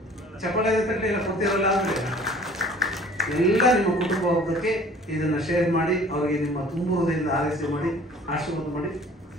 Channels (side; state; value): both; normal; correlation 0.50